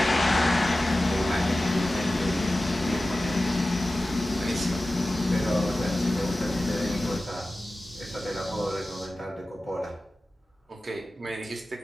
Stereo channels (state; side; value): normal; both; correlation 0.95